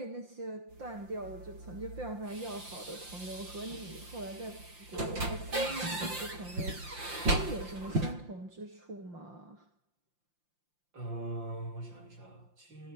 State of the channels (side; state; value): left; late; 5.7 ms